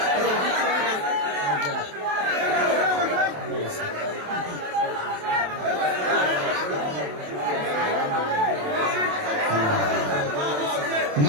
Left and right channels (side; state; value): left; late; 27 ms